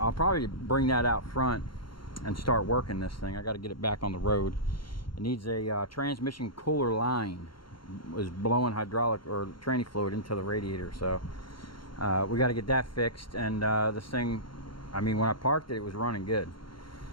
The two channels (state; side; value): late; right; 0.73 ms